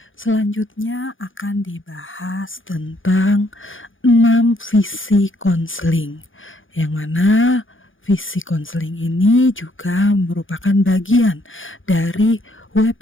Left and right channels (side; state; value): right; late; 0.58 ms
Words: Selanjutnya akan dibahas tentang 6 visi konseling, yang mana visi konseling ini juga merupakan bagian dari